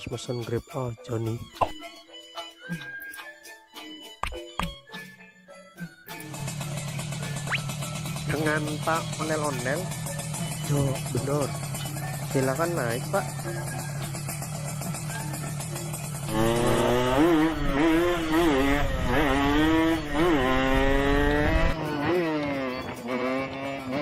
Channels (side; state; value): both; identical; correlation 1.00